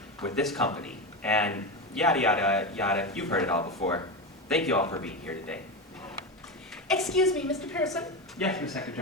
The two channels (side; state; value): both; normal; correlation 0.17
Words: with this company, and yada yada yada, you've heard it all before. Thank you all for being here today. Excuse me, Mr. Pearson. Yes, Miss